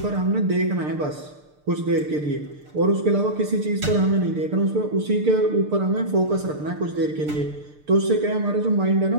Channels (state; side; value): late; left; 6.7 ms